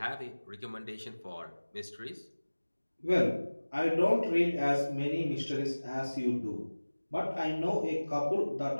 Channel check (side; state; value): both; inverted; correlation -1.00